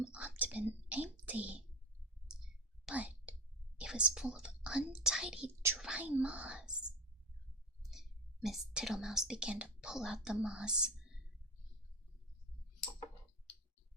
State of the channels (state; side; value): normal; both; correlation 0.28